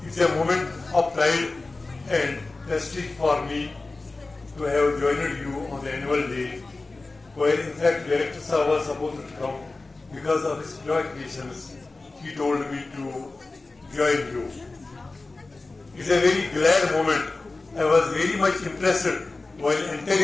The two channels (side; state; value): right; quieter; 3.4 dB